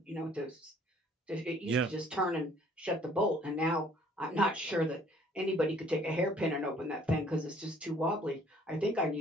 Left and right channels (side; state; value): both; normal; correlation 0.58